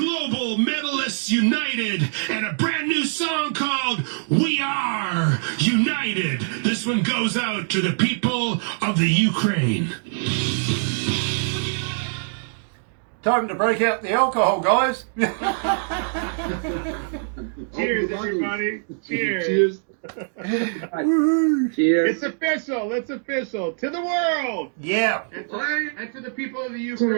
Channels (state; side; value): silent; left; digital silence